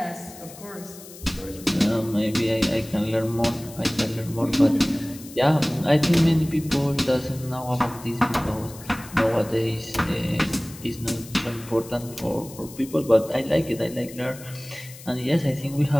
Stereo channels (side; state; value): left; noise; hiss, 17 dB below the sound